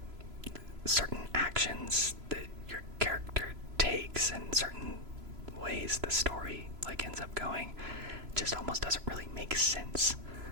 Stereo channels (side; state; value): left; late; 3.0 ms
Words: certain actions that your character takes and certain ways the story like ends up going just almost doesn't really make sense.